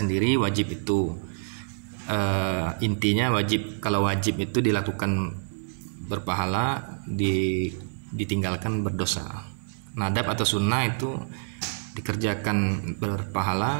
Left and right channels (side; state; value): left; silent; 57 dB below the other